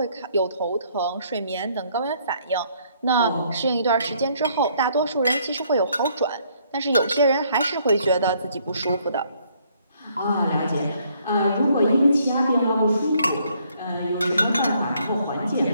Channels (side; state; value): both; inverted; correlation -0.67